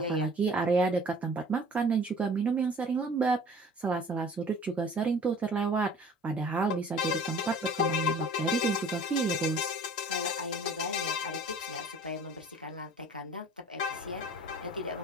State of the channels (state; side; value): normal; both; correlation 0.47